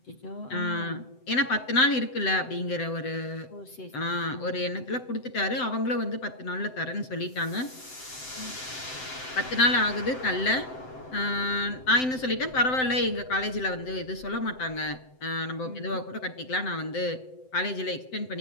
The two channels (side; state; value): right; late; 7.8 ms